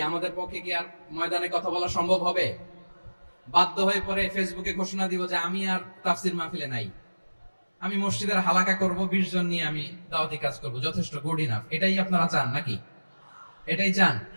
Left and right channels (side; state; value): both; inverted; correlation -1.00